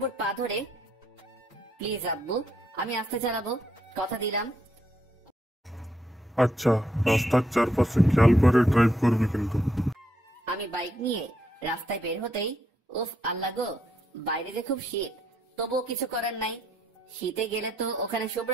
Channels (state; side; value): normal; both; correlation 0.75